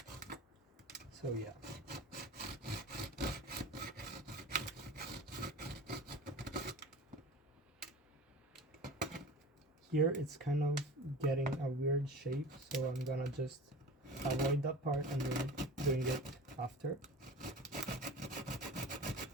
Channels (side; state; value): both; normal; correlation 0.36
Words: So yeah. Here it's kind of getting a weird shape, so I'm gonna just avoid that part and then doing it after.